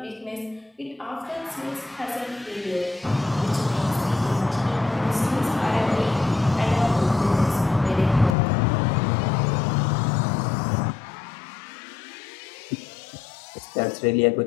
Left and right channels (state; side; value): drops out; right; at 8.3 s